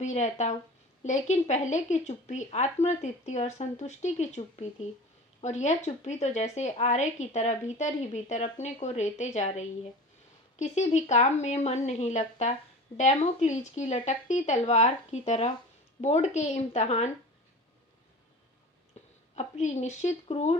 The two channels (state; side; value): normal; both; correlation 0.37